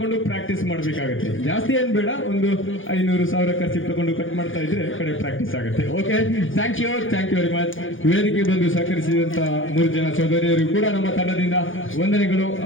ಪ್ರಾಕ್ಟೀಸ್ ಮಾಡಬೇಕಾಗುತ್ತೆ. ಜಾಸ್ತಿ ಏನ್ ಬೇಡ, ಒಂದು 500,000 ಖರ್ಚಿಗೆ ತಗೊಂಡು ಕಟ್ ಮಾಡ್ತಾ ಇದ್ರೆ ಕಡೆ ಪ್ರಾಕ್ಟೀಸ್ ಆಗುತ್ತೆ. Okay, thank you very much. ವೇದಿಕೆ ಬಂದು ಸಹಕರಿಸಿದಂತ 3 ಜನ ಸಹೋದರಿಯರು ಕೂಡ ನಮ್ಮ ತಂಡದಿಂದ ವಂದನೆಗಳು,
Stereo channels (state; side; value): late; right; 0.58 ms